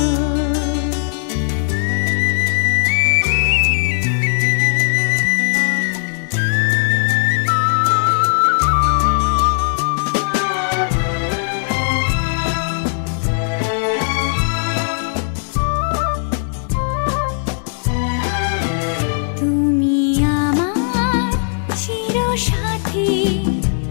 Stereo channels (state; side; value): silent; right; digital silence